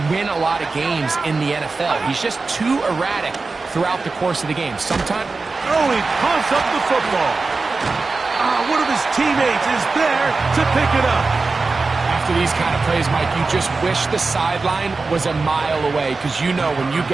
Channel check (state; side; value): quieter; left; 3.9 dB